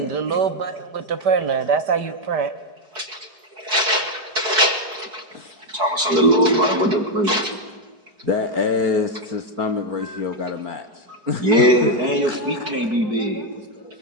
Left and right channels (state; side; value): late; left; 4.7 ms